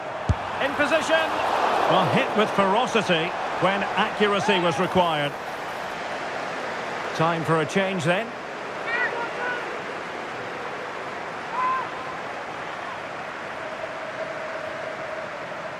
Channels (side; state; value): both; identical; correlation 1.00